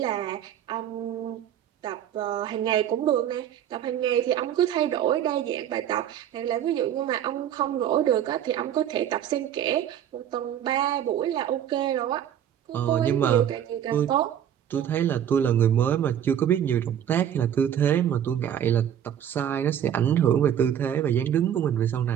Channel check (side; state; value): left; quieter; 10.0 dB